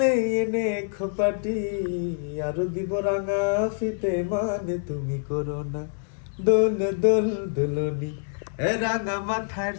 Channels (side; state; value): right; silent; digital silence